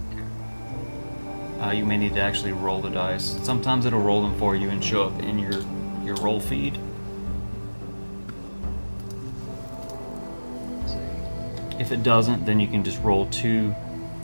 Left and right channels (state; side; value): inverted; both; correlation -1.00